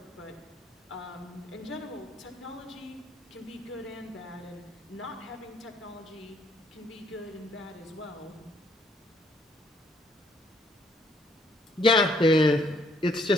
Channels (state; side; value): normal; both; correlation 0.67